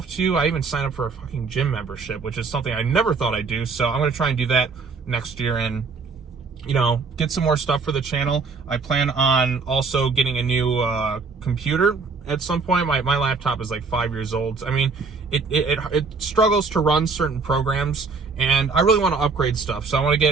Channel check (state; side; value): quieter; left; 4.6 dB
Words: too. I even signed up for a fucking gym membership, which is something I never thought I'd do. So I'm going to try and do that next year and, you know, get some more stuff for the channel. I plan on also getting a new computer at some point. My laptop is like 5 years old. I mean, it struggles to run certain programs, and I really want to upgrade stuff. So I want to